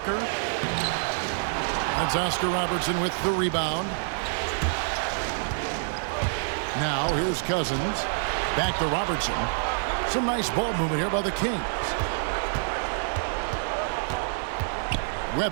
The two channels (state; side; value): silent; left; 60 dB below the other